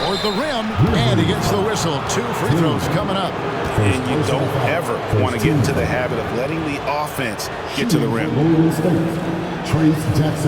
toward the rim, and he gets the whistle. 2 free throws coming up. And you don't ever want to get into the habit of letting the offense get to the rim. Golden State, Trace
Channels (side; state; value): both; identical; correlation 1.00